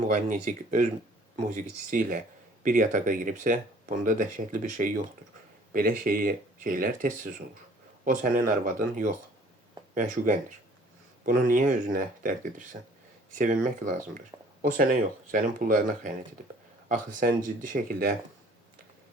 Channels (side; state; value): both; normal; correlation 0.54